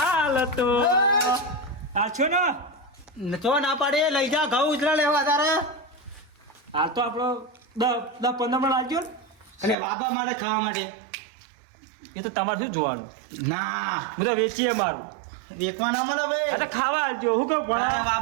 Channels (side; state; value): left; drops out; at 9.8 s